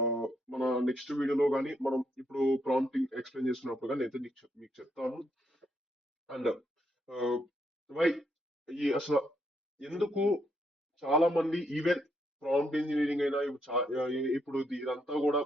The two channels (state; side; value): normal; both; correlation 0.77